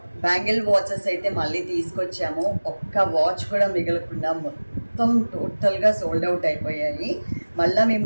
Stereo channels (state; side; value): inverted; both; correlation -1.00